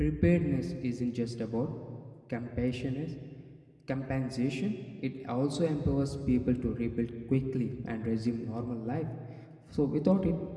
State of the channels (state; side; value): identical; both; correlation 1.00